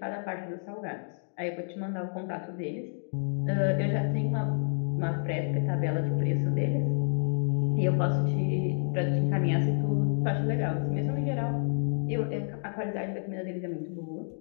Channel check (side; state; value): right; silent; digital silence